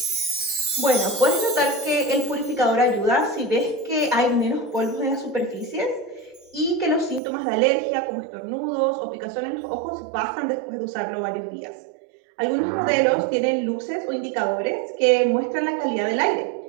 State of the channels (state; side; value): drops out; left; at 7.2 s